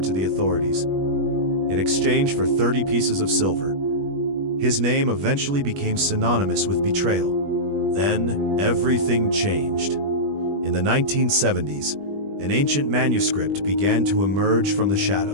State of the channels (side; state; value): left; late; 21 ms